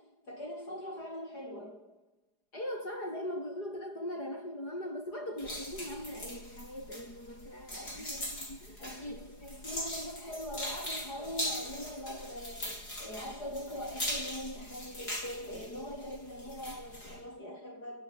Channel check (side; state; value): right; late; 4.9 ms